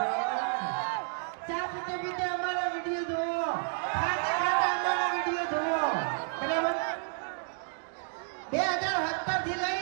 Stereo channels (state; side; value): silent; left; 57 dB below the other